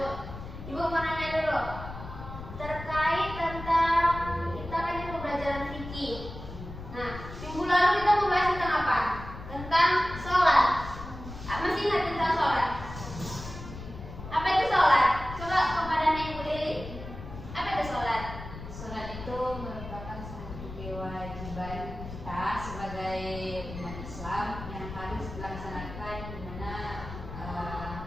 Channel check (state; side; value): noise; left; rumble, 11 dB below the sound